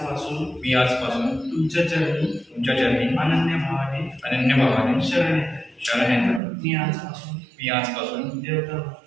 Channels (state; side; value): drops out; left; at 6.4 s